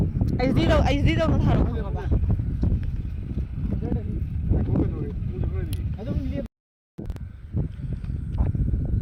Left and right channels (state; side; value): identical; both; correlation 1.00